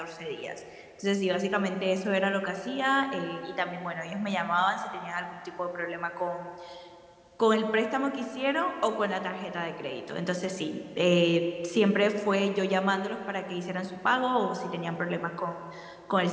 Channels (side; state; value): both; identical; correlation 1.00